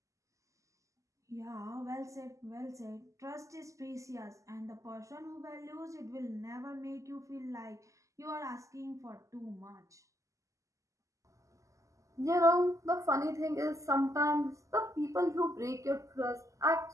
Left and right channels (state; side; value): late; left; 0.16 ms